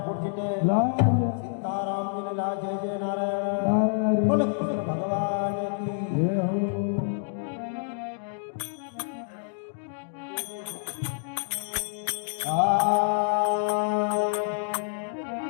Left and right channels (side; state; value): right; silent; digital silence